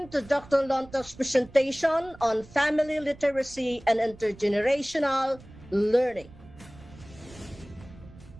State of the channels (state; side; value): noise; right; rumble, 20 dB below the sound